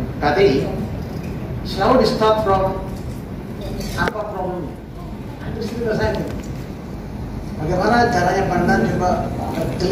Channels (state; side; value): identical; both; correlation 1.00